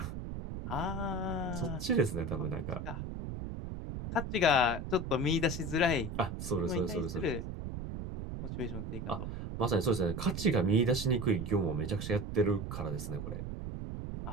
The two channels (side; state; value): right; noise; rumble, 6 dB below the sound